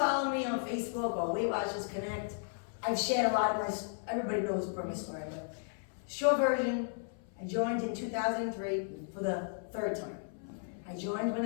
me on Facebook or Weight Watchers Connect, I've shared a lot of my, everybody knows my story, but short version, I joined in 2003 for the 3rd time. I joined when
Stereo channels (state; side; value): silent; right; 55 dB below the other